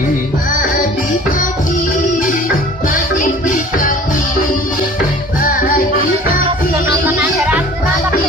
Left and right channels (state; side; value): normal; both; correlation 0.47